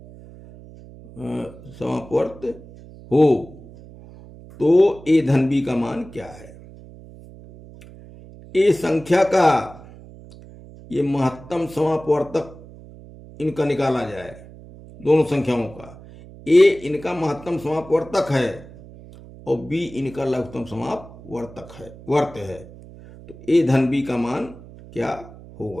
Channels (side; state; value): right; noise; hum, 19 dB below the sound